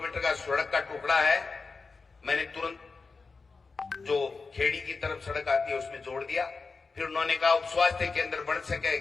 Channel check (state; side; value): quieter; right; 4.4 dB